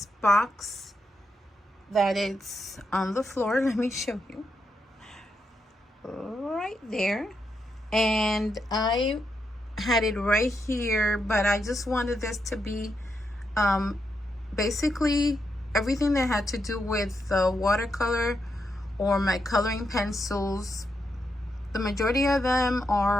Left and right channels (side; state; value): both; normal; correlation 0.83